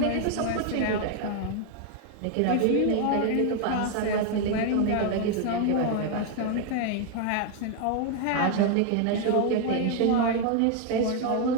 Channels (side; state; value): both; different; correlation 0.01